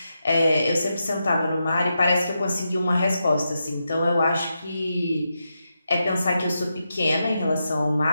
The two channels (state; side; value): inverted; both; correlation -0.86